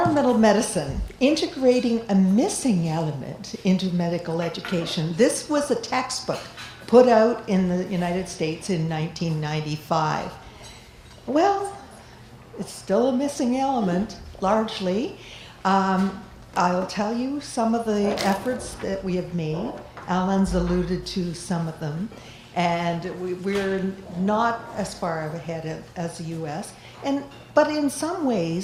medicine, integrating a missing element into medical education. This was a textbook put out in the United States in 1995. Well, it's still a missing element, largely. I'll tell you some of the efforts that we have made. Alan's alluded to some of them. And we're not as far ahead as the US. But in some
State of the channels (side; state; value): both; identical; correlation 1.00